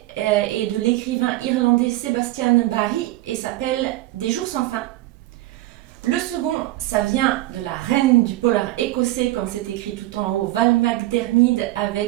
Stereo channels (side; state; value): left; quieter; 17.2 dB